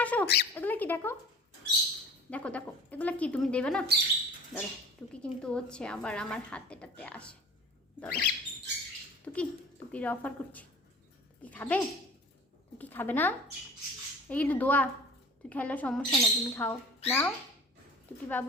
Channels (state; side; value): normal; both; correlation 0.42